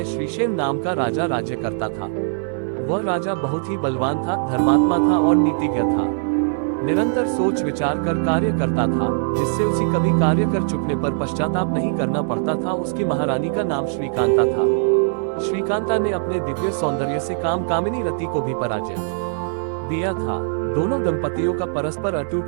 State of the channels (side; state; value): left; silent; 58 dB below the other